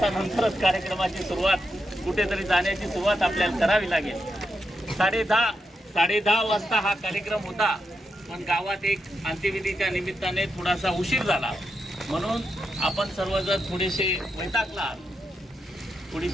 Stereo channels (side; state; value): both; normal; correlation 0.85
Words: कार्यक्रमाची सुरुवात, कुठेतरी जाण्याची सुरुवात आपल्याला करावी लागेल. 10:30 वाजता हा कार्यक्रम होता, पण गावात एक अंत्यविधीच्या निमित्ताने थोडासा उशीर झाला म्हणून आपण सर्वजण थोडेसे वैतागला,